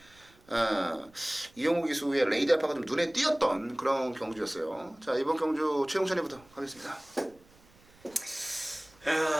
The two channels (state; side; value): noise; right; rumble, 28 dB below the sound